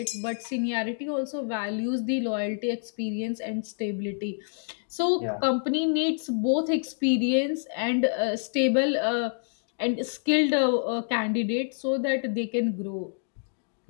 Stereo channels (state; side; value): silent; right; digital silence